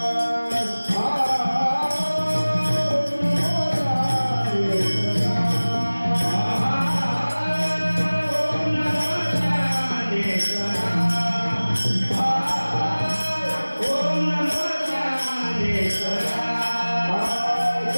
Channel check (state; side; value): inverted; both; correlation -1.00